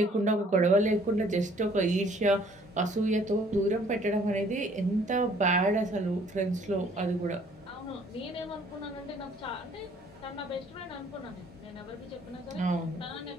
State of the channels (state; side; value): normal; both; correlation 0.59